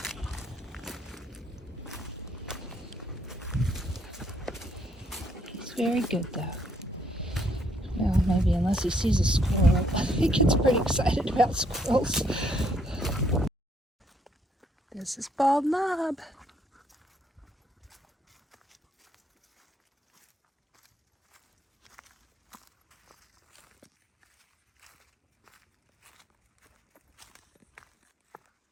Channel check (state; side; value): normal; both; correlation 0.69